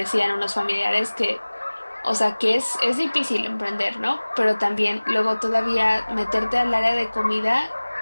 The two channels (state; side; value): inverted; both; correlation -1.00